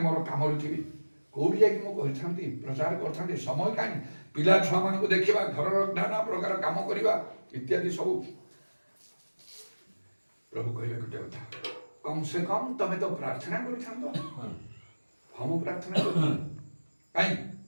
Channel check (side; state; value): both; inverted; correlation -1.00